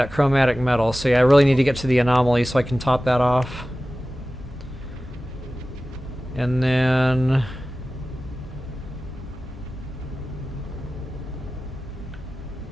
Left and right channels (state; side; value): normal; both; correlation 0.96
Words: chromatic metal, so yeah, I really need to get to the anomaly so I can top that off. And then...